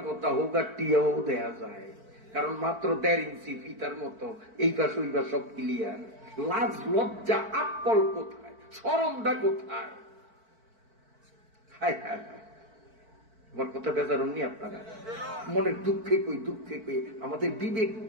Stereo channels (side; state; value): left; late; 4.5 ms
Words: কথা হোক, আর টিয়াও দেখা যায়, কারণ মাত্র 1.5 ইঞ্চি ফিতার মতো, এই পাশ ওই পাশ সব ক্লিয়ার। লাজ লজ্জা আকল কোথায়, শরমটা কোথায়? হায় হায় হায়, আমার কথা বেজারুননি আপনারা? মনে দুঃখে কই, দুঃখে কই আমাদের বিবেক